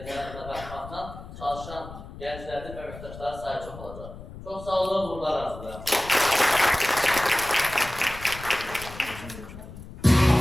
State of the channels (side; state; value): left; noise; rumble, 14 dB below the sound